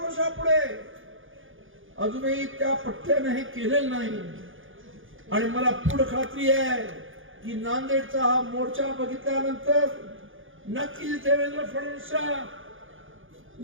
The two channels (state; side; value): late; left; 0.58 ms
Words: अजूनही त्या पठ्ठ्याने हे केलेलं नाही. आणि मला पूर्ण खात्री आहे की नांदेडचा हा मोर्चा बघितल्यानंतर नक्कीच देवेंद्र फडणवीसच्या